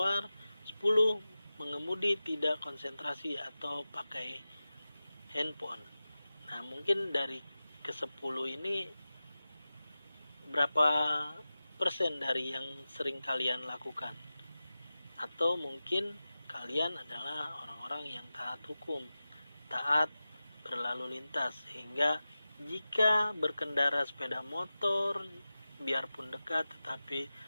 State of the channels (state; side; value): inverted; both; correlation -0.95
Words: 10. Mengemudi tidak konsentrasi atau pakai handphone. Nah, mungkin dari ke-10 ini berapa persen dari yang sering kalian lakukan? Atau mungkin kalian adalah orang-orang yang taat hukum, taat berlalu lintas, sehingga jika berkendara sepeda motor biarpun dekat tetapi